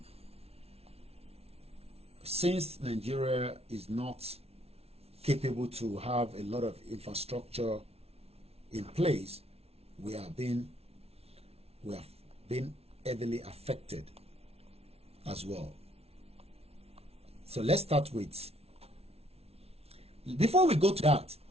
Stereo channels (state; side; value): late; left; 0.30 ms